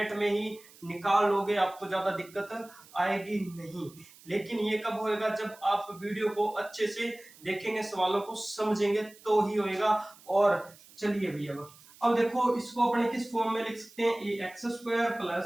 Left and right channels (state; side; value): noise; right; hiss, 23 dB below the sound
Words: में ही निकाल लोगे, आपको ज्यादा दिक्कत आएगी नहीं। लेकिन ये कब होएगा, जब आप वीडियो को अच्छे से देखेंगे, सवालों को समझेंगे तो ही होएगा। और चलिए भैया अब देखो, इसको अपने किस फॉर्म में लिख सकते हैं, A X square